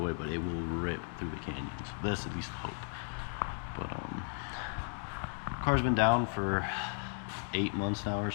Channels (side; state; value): right; silent; 54 dB below the other